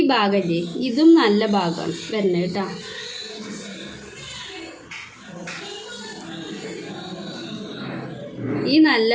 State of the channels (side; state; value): both; identical; correlation 1.00